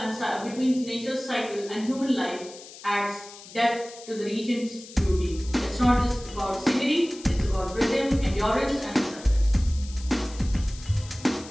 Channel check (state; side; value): noise; left; hiss, 17 dB below the sound